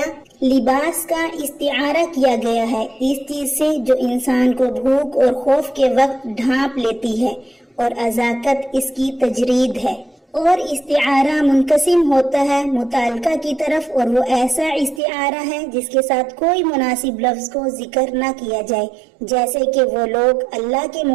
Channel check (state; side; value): drops out; left; at 15.0 s